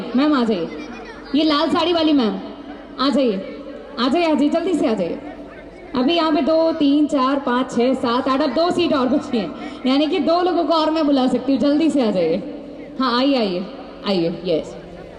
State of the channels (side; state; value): both; identical; correlation 1.00